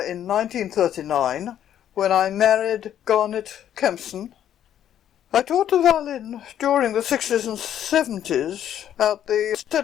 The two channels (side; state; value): right; quieter; 10.5 dB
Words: in 1939 when I married Garnet Kempson. I taught the violin during the 60s and 70s at the